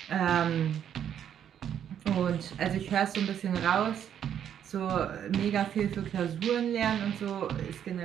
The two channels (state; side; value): quieter; left; 9.4 dB